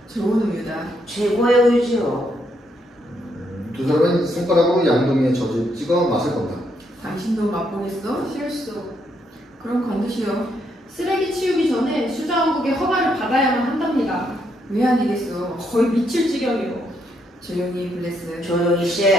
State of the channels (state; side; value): normal; both; correlation 0.76